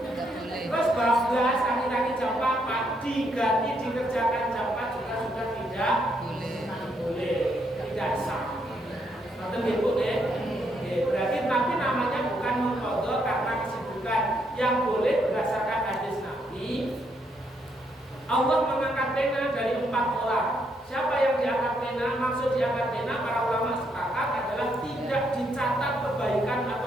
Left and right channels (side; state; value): both; normal; correlation 0.75